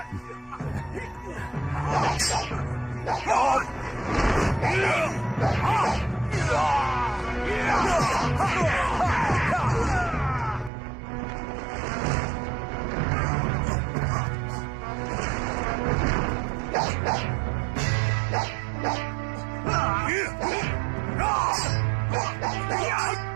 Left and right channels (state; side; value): drops out; left; at 10.7 s